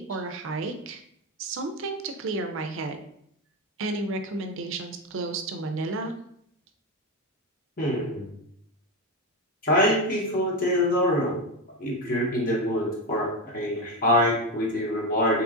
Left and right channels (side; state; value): both; normal; correlation 0.13